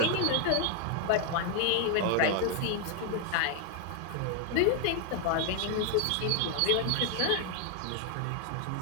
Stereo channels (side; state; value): both; different; correlation 0.00